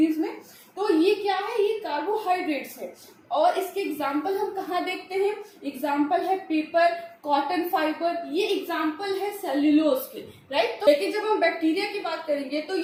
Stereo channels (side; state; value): both; identical; correlation 1.00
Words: में। तो ये क्या है, ये कार्बोहाइड्रेट्स है। और इसके एग्जाम्पल हम कहाँ देखते हैं, एग्जाम्पल है पेपर, कॉटन फाइबर, ये एग्जाम्पल है सेल्यूलोज के, राइट। तो लेकिन जब हम बैक्टीरिया की बात करेंगे तो